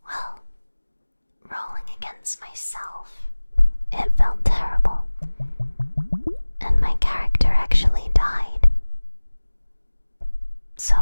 well, rolling against myself, it felt terrible, and my character actually died. So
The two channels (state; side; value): inverted; both; correlation -1.00